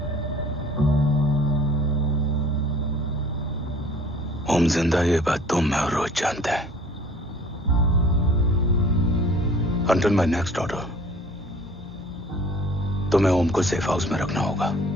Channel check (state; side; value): normal; both; correlation 0.50